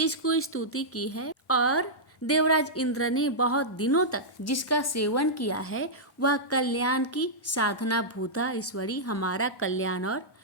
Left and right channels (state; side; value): normal; both; correlation -0.10